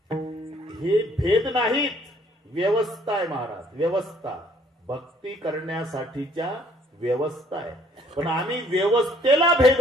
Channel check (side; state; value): both; normal; correlation 0.62